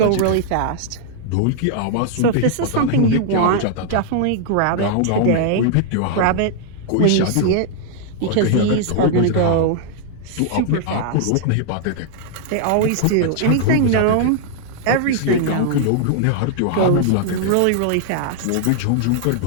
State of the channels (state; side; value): different; both; correlation 0.00